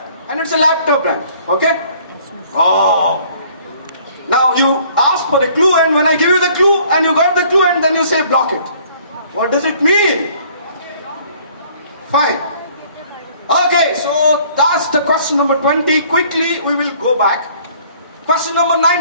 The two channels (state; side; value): inverted; both; correlation -0.57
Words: and it's a laptop brand. Okay? Oh. Now you ask for a clue, and when I give you the clue, and you got the clue, and then you say block it. What does it mean? Fine. Okay, so that's the question number 20. Quickly, we will go back. Question number